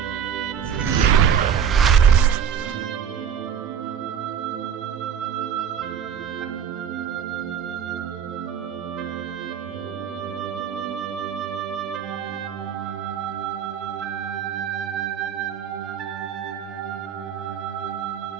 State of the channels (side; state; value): left; quieter; 8.1 dB